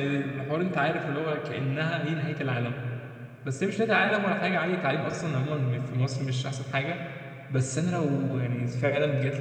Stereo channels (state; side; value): identical; both; correlation 1.00